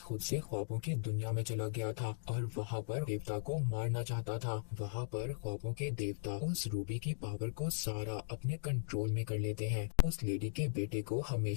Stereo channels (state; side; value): silent; right; digital silence